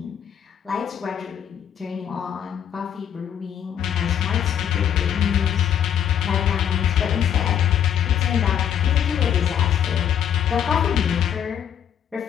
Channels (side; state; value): right; quieter; 9.1 dB